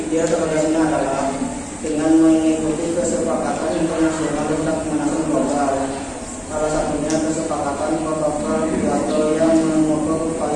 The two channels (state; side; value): identical; both; correlation 1.00